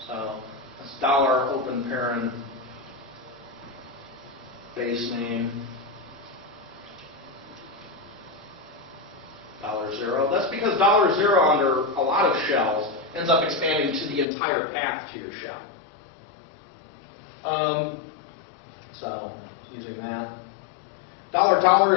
So that's $open parent base name $0. That's because $0 under a lot of shells ends up expanding to the entire path to your shell. So using that. $$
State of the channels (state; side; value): drops out; right; at 14.2 s